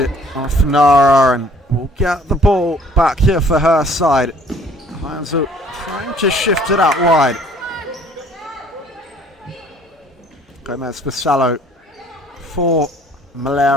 it off Nara and will get the ball back here for her side. Heinzel trying to shift it out wide. Gomez Bisallo for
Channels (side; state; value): both; normal; correlation 0.56